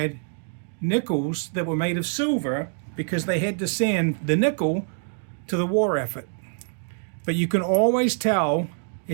nickels that were made of silver because they had to send the nickel to the war effort. But you can always tell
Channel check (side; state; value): left; silent; 62 dB below the other